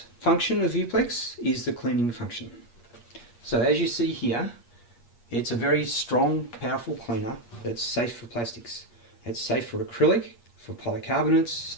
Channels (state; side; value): late; right; 8.5 ms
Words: function of VuPlex is the cleaning function. So as you see here, it's a very strong, powerful cleaner that's safe for plastics. It's safe for acrylic, for polycarbonates,